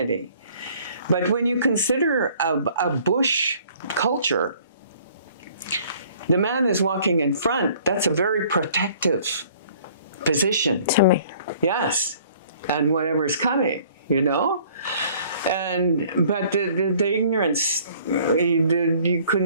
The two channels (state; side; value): inverted; both; correlation -0.56